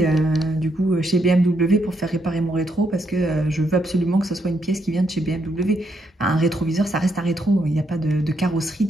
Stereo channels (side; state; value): both; normal; correlation 0.77